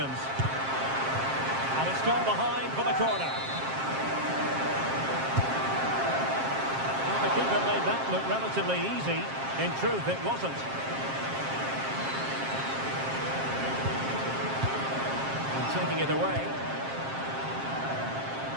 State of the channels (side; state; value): left; late; 7.5 ms